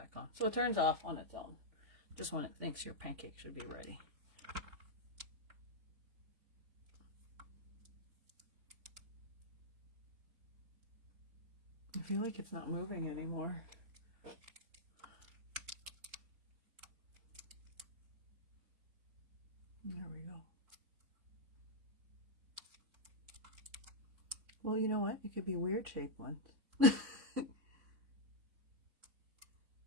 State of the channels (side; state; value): left; late; 3.5 ms